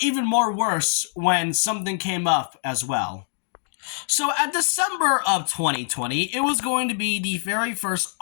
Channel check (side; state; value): right; silent; digital silence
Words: even more worse when something came up as well. So at December of 2020, it was going to be the very first